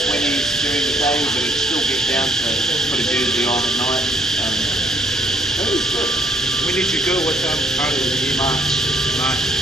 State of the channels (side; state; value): both; normal; correlation 0.67